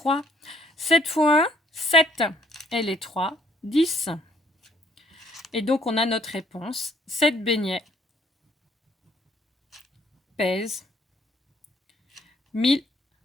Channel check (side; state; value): both; normal; correlation 0.63